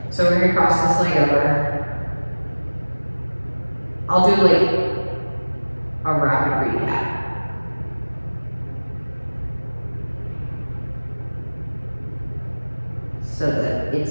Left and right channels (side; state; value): both; inverted; correlation -1.00